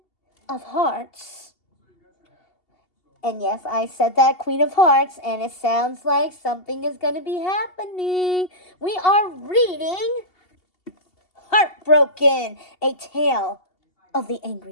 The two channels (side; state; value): right; late; 2.7 ms